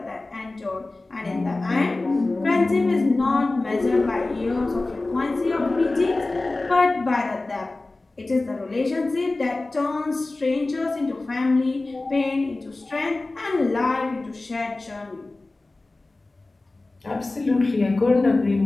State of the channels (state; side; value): quieter; right; 3.1 dB